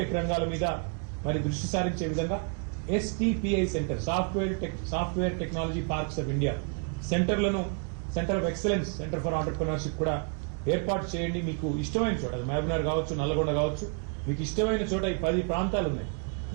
రంగాల మీద మరి దృష్టి సారించే విధంగా STPI centre, software technology parks of India సెంటర్లను, centre of excellence, centre for entrepreneurship కూడా ఏర్పాటు చేయండి. మీకు ఇష్టమైన చోట, అది మహబూబ్నగర్ కావచ్చు, నల్లగొండ కావచ్చు, మీకు ఇష్టమైన చోట ఈ 10 ప్రాంతాలు ఉన్నాయి.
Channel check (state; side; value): quieter; left; 38.8 dB